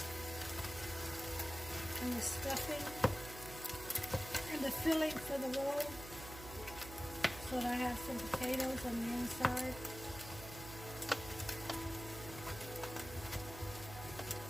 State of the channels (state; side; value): noise; right; hum, 12 dB below the sound